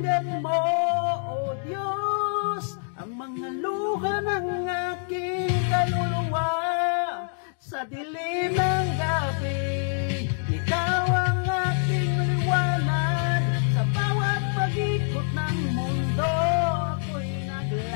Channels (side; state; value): right; silent; digital silence